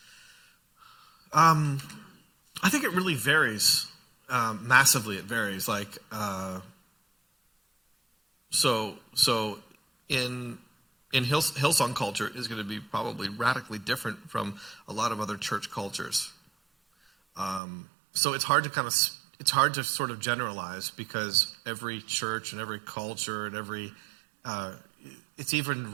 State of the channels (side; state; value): left; drops out; at 17.6 s